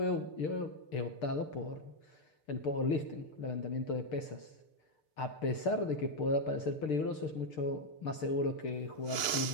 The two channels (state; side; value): late; right; 6.7 ms